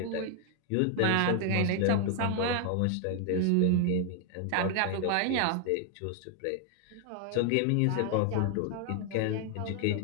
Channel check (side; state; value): both; different; correlation 0.00